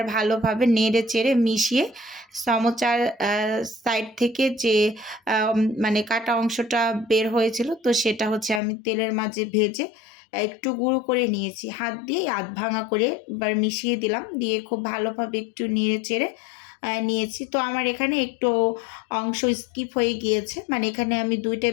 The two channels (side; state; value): right; drops out; at 8.6 s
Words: ভালোভাবে নেড়ে চেড়ে মিশিয়ে সমোচার সাইড থেকে যে মানে কাটা অংশটা বের হয়েছিল, তো সেটা হচ্ছে আমি তেলের মাঝে ভেজে একটু গুঁড়ো করে নিয়েছি, হাত দিয়ে আধ ভাঙা করে এবার মিশিয়ে দিলাম, দিয়ে খুব ভালোভাবে একটু নেড়ে চেড়ে নিয়েছি। তো আমার এখানে একটু অংশ স্কিপ হয়ে গিয়েছে, মানে এখানে আমি 2